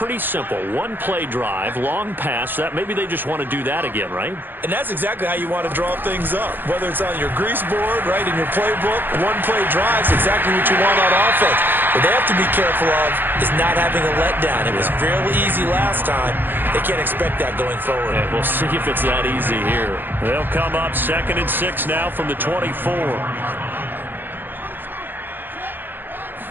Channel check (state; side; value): late; left; 0.094 ms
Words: simple. 1-play drive, long pass. That maybe they just want to do that again, right? And that's exactly how you want to draw things up. Whether it's on your grease board, right, in your playbook, 1-play drive is exactly what you want on offense. What they have to be careful of is not having a letdown. It was fairly easy last time. They can't expect that going forward. Yeah, we'll see if it's that easy here. They'll come up 2nd and 6 now from the 24.